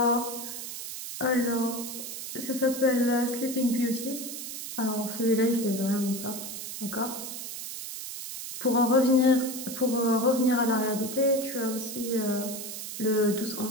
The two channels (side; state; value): right; noise; hiss, 8 dB below the sound